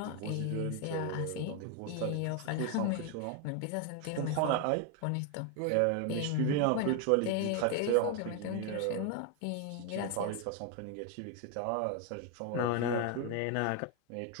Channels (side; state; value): both; different; correlation 0.01